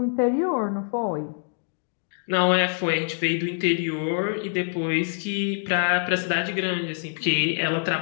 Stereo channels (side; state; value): right; silent; digital silence